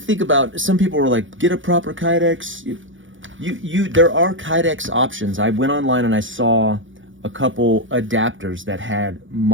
about, some people were like, get a proper Kydex. There are Kydex options. I went online and I saw a couple adapters that had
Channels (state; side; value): late; left; 0.56 ms